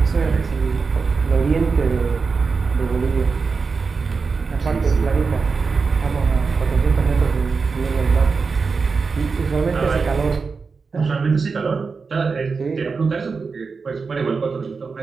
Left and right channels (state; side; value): quieter; left; 4.8 dB